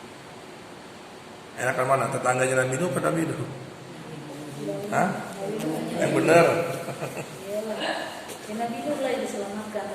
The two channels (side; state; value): both; identical; correlation 1.00